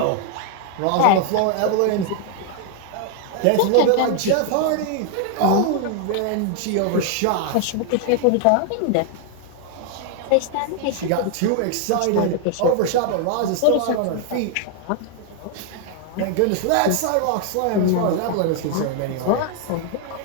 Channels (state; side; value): different; both; correlation 0.00